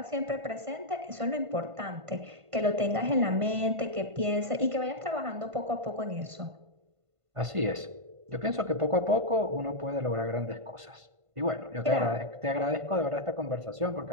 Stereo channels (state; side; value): late; left; 1.5 ms